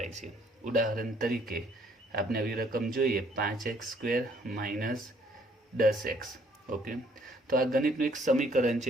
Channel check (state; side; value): normal; both; correlation 0.64